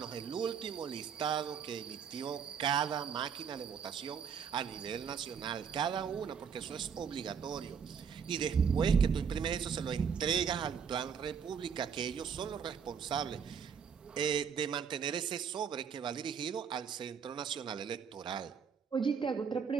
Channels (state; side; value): quieter; left; 7.0 dB